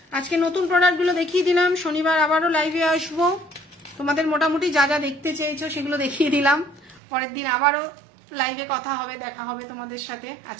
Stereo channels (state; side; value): drops out; left; at 7.0 s